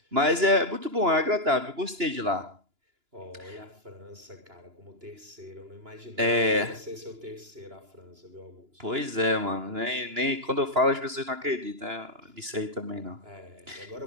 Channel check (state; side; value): late; left; 2.9 ms